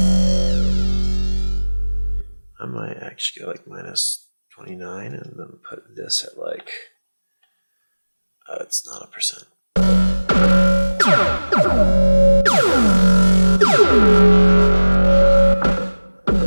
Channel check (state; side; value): inverted; both; correlation -1.00